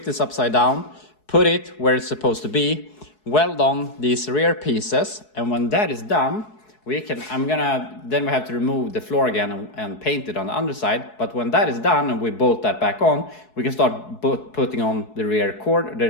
this upside down, put it where it's supposed to be, weld on these rear pieces. And when that is done, then we have to remove the floor again and paint it on the underside. But when that is done and we bolt that back on, we can start putting on the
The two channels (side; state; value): right; late; 4.7 ms